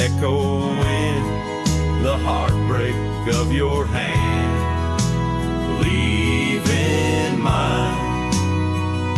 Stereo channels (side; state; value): both; identical; correlation 1.00